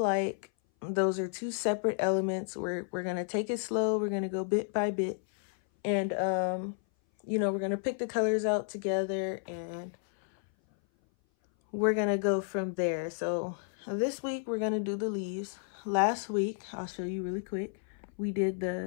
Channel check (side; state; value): right; silent; 57 dB below the other